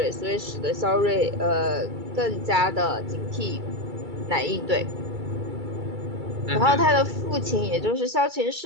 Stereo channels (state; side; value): late; left; 2.3 ms